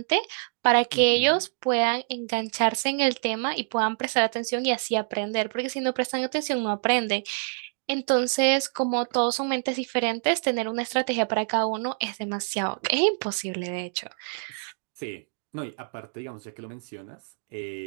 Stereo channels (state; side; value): silent; left; digital silence